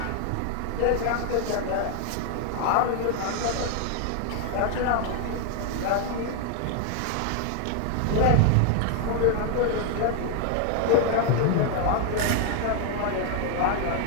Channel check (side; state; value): both; different; correlation 0.00